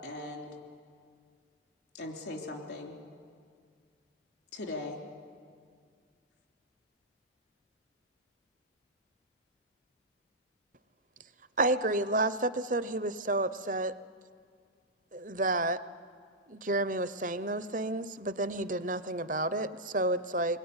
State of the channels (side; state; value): both; normal; correlation -0.09